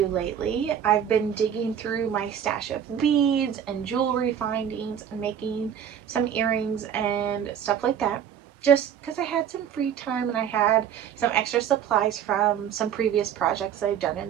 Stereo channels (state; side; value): quieter; left; 8.9 dB